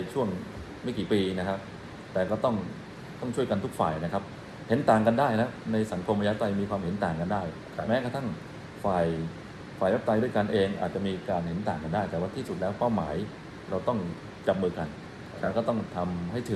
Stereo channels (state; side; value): identical; both; correlation 1.00